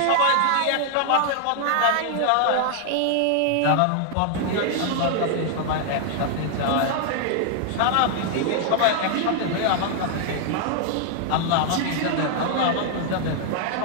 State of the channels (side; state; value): both; different; correlation 0.00